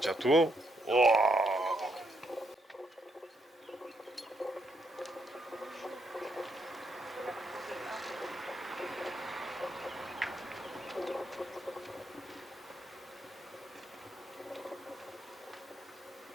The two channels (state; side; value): normal; both; correlation 0.77